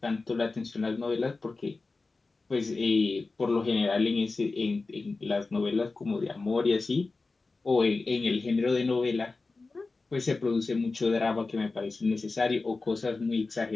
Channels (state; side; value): quieter; right; 3.7 dB